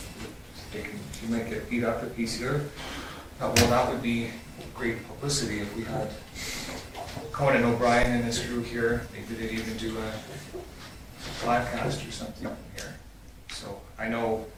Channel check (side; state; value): both; identical; correlation 1.00